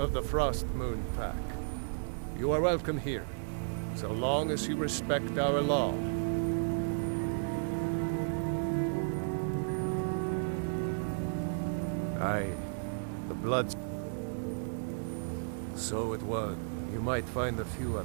the Frostmoon Pack. You are welcome here, so long as you respect our law. Aye, the Bloods. So it was. You might find a few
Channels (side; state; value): left; silent; digital silence